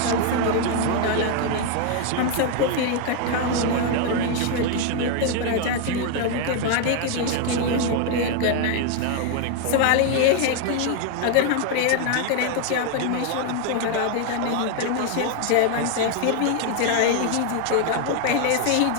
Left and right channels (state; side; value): different; both; correlation 0.00